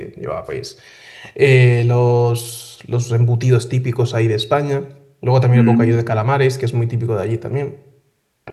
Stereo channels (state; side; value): identical; both; correlation 1.00